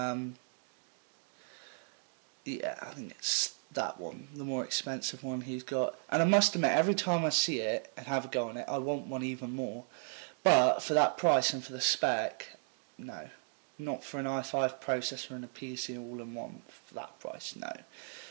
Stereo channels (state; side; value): silent; left; digital silence